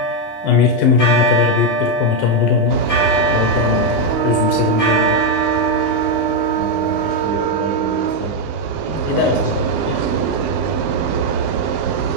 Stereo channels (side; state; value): right; late; 19 ms